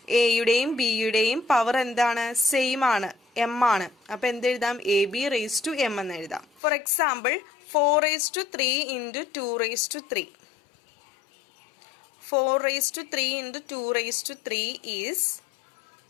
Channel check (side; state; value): right; drops out; at 6.6 s